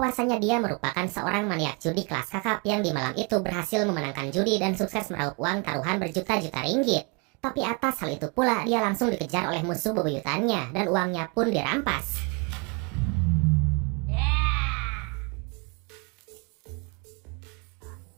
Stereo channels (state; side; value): quieter; left; 31.9 dB